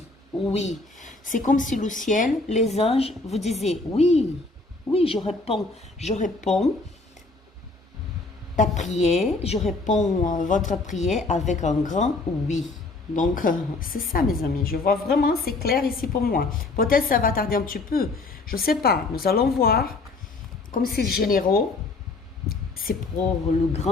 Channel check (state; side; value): quieter; right; 3.5 dB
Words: oui. C'est comme si le ciel, les anges vous disaient oui, oui, je réponds ta prière, je réponds votre prière avec un grand oui. Donc, c'est ça, mes amis. Je vois vraiment, c'est clair ici pour moi. Peut-être ça va tarder un petit peu. Je ne sais pas. Nous allons voir. Comme c'est généraux, c'est pour le